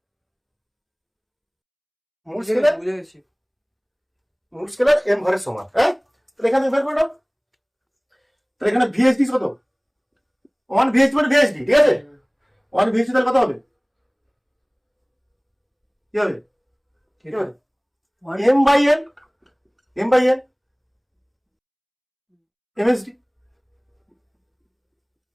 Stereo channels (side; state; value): both; identical; correlation 1.00